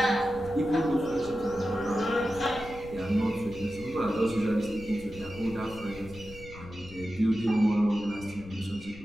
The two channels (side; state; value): left; noise; rumble, 17 dB below the sound